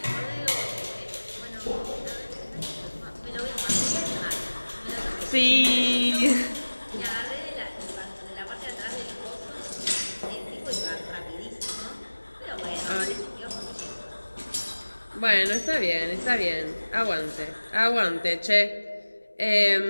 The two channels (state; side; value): inverted; both; correlation -1.00